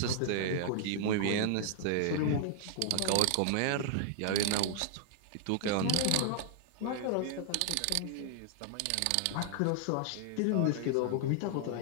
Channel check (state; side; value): different; both; correlation -0.01